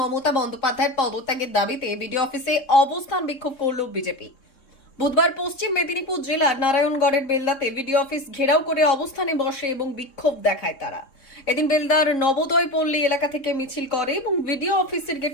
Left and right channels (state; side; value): late; right; 3.7 ms